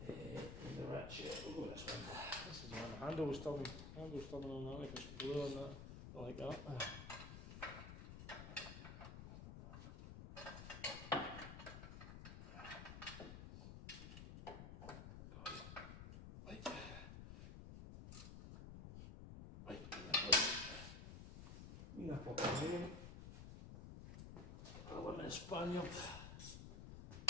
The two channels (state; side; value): noise; left; rumble, 10 dB below the sound